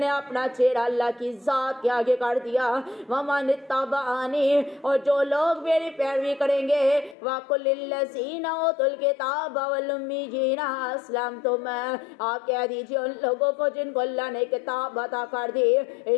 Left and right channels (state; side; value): drops out; right; at 7.2 s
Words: نے اپنا چہرہ اللہ کی ذات کے آگے کر دیا، وَمَنِ اتَّبَعَنِي، اور جو لوگ میری پیروی کریں گے، وَقُلْ لِلَّذِينَ أُوتُوا الْكِتَابَ وَالْأُمِّيِّينَ أَسْلَمْتُمْ، آپ کہہ دیجئے ان لوگوں کو جن کو اللہ نے کتاب عطا کر دی